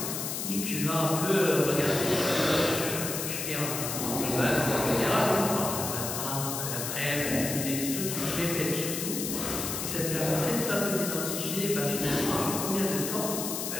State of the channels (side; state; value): left; noise; hiss, 3 dB below the sound